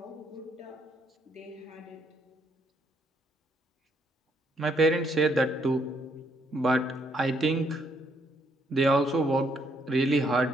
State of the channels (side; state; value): both; normal; correlation 0.72